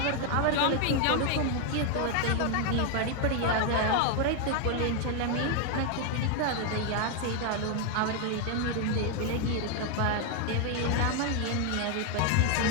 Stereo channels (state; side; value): different; both; correlation 0.01